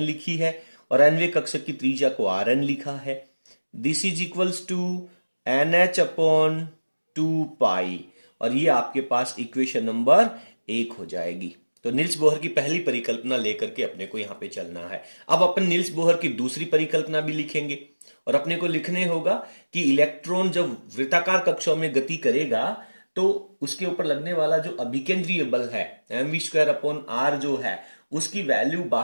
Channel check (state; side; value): inverted; both; correlation -1.00